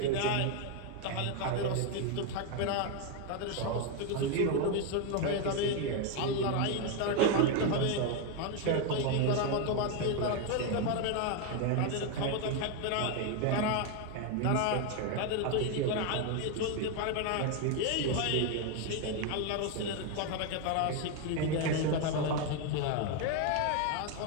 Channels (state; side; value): different; both; correlation 0.01